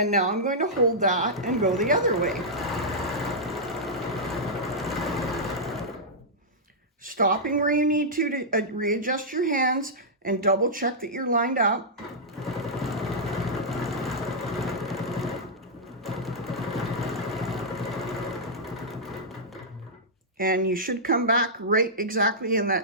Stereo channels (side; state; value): both; normal; correlation -0.10